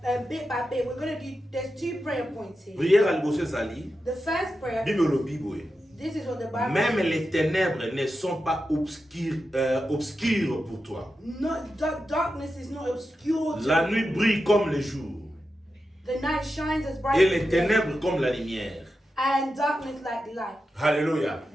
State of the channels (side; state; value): both; normal; correlation 0.90